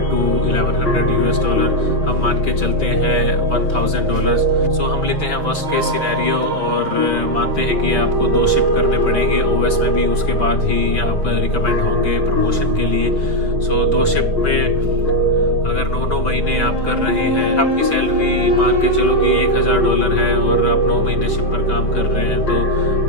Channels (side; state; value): right; late; 5.5 ms